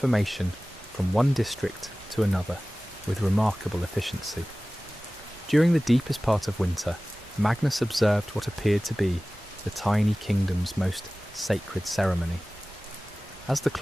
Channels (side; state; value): both; normal; correlation 0.97